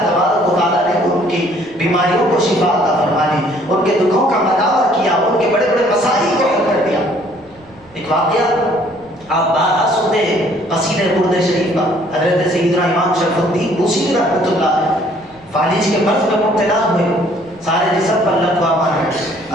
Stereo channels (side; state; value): right; noise; rumble, 28 dB below the sound